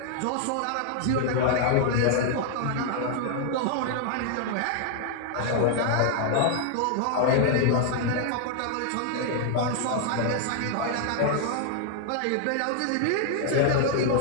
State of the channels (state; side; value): different; both; correlation 0.00